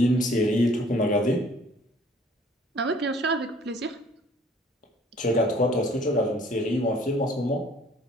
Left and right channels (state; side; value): normal; both; correlation 0.55